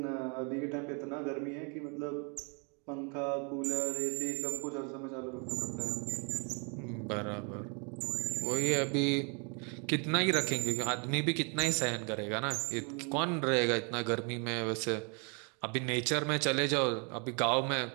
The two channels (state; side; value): quieter; left; 36.2 dB